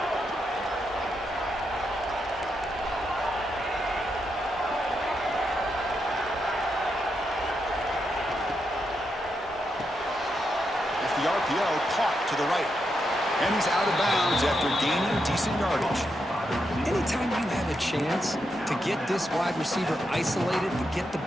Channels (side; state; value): both; normal; correlation 0.83